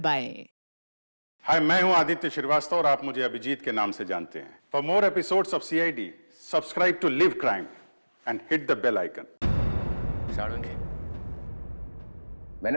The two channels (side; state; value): both; inverted; correlation -1.00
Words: हाय, मैं हूं आदित्य श्रीवास्तव और आप मुझे अभिजीत के नाम से जानते हैं। For more episodes of CID, subscribe to live crime and hit the bell icon. Salunkhe,